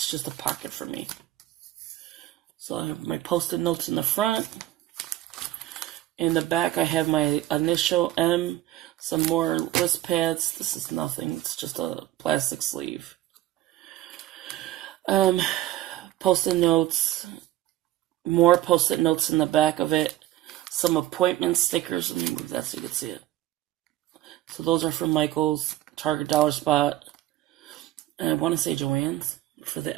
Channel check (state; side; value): quieter; left; 14.8 dB